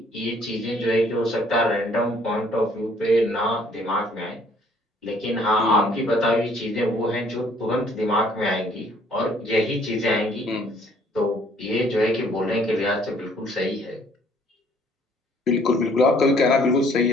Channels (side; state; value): both; normal; correlation 0.61